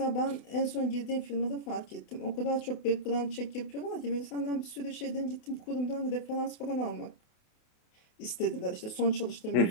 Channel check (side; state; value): right; late; 28 ms